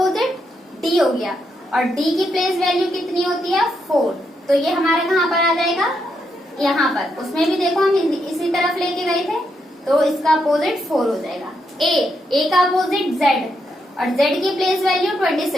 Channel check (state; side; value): normal; both; correlation 0.80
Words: D हो गया, और D की प्लेस वैल्यू कितनी होती है 4। तो ये हमारे कहाँ पर आ जाएगा, यहाँ पर। उसमें भी देखो हम इसी तरफ लेके गए थे, तो इसका अपोजिट 4 हो जाएगा। A का अपोजिट Z, और Z की प्लेस वैल्यू